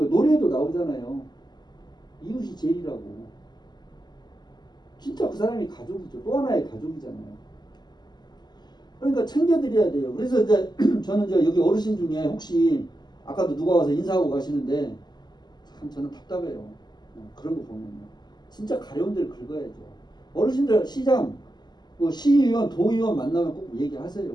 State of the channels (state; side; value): late; right; 0.21 ms